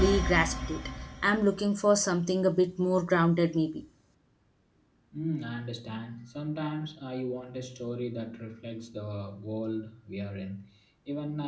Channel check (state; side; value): identical; both; correlation 1.00